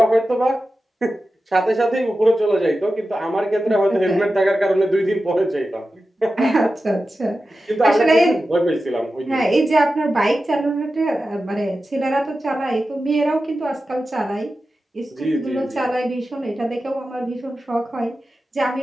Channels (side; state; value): both; normal; correlation 0.93